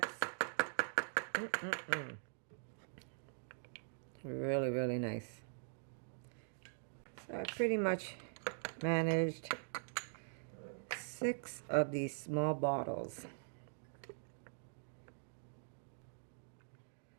Really, really nice. So I pretty much managed 6 of these small bottles.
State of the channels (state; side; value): silent; left; digital silence